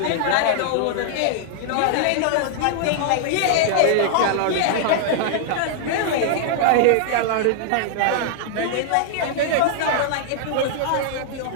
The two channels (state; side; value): different; both; correlation -0.01